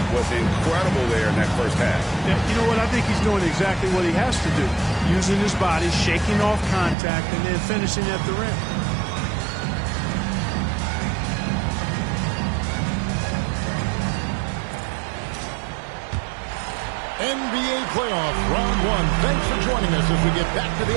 was incredible there in that first half. Yeah, you know what? I think he's doing exactly what he has to do. Using his body, shaking off contact, and then finishing at the rim. NBA playoff round 1. Thanks for joining us as we get back to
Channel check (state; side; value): drops out; left; at 7.0 s